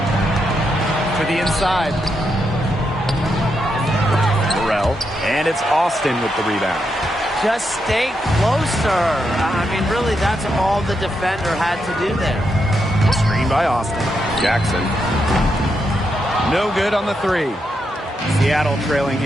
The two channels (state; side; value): normal; both; correlation 0.82